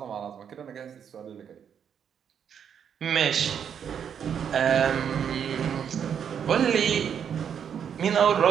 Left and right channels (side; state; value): left; quieter; 8.1 dB